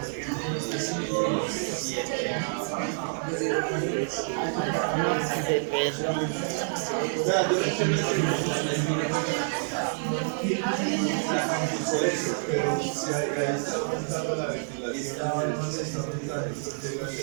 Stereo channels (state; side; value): silent; left; digital silence